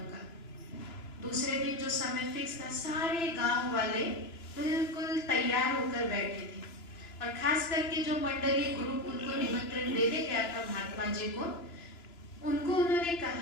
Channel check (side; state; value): right; late; 3.0 ms